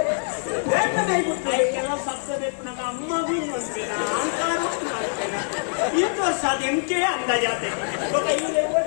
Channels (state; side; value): silent; right; digital silence